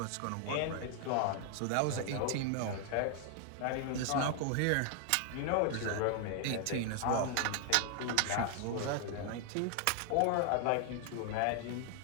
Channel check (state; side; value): different; both; correlation 0.00